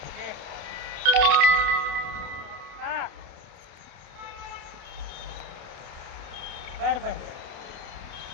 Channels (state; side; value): late; left; 28 ms